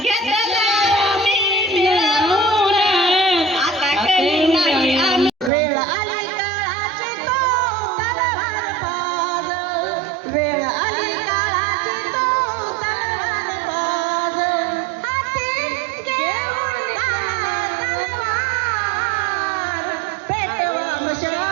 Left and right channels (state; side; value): drops out; left; at 5.5 s